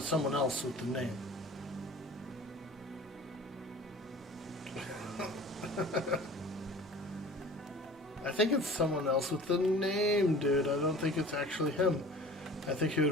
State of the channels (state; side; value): normal; both; correlation 0.43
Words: someone else with the name? I think it's someone else with the name, dude. I don't think it's actually him. I think he would